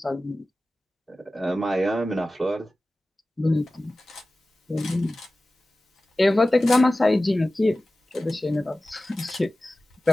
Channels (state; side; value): normal; both; correlation 0.96